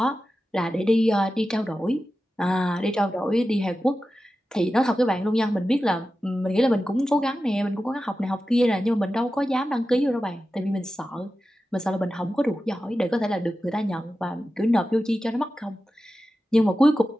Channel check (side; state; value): both; normal; correlation 0.93